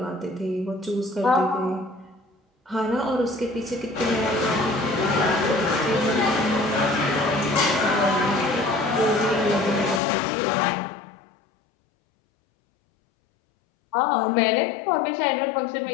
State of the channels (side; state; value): right; drops out; at 10.0 s